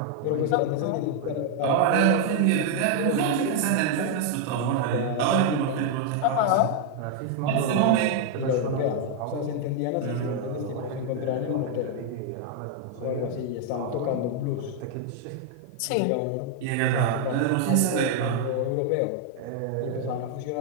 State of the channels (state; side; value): different; both; correlation 0.00